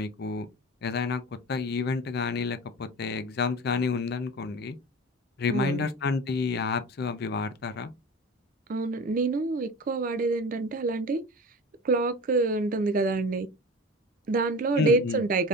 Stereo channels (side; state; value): both; normal; correlation 0.33